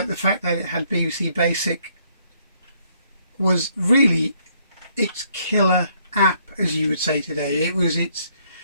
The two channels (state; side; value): inverted; both; correlation -0.69